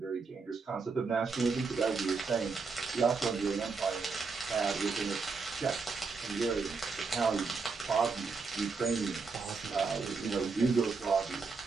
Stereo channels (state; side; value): quieter; left; 4.6 dB